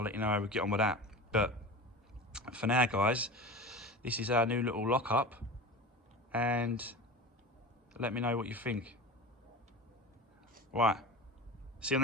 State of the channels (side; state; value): both; normal; correlation 0.32